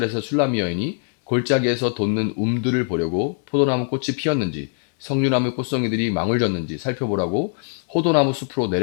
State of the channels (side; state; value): right; silent; 59 dB below the other